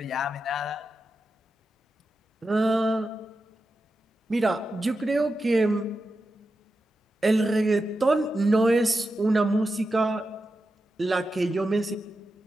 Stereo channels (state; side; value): normal; both; correlation 0.90